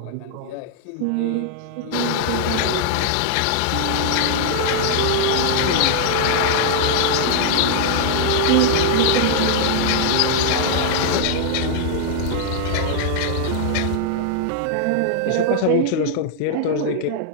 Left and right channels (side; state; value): both; different; correlation -0.01